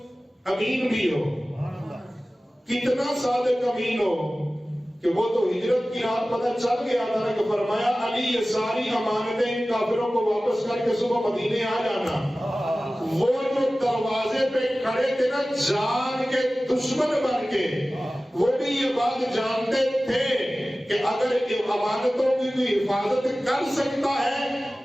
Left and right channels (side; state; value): both; normal; correlation 0.96